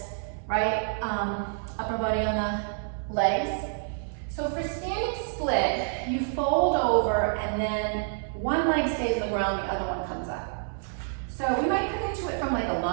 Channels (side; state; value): left; silent; digital silence